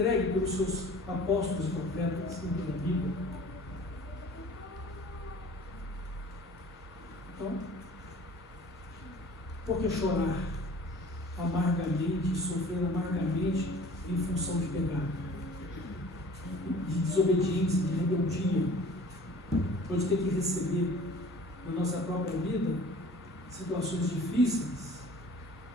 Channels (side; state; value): both; normal; correlation 0.47